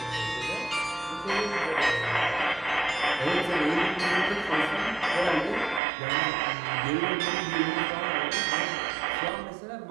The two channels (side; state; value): left; drops out; at 5.8 s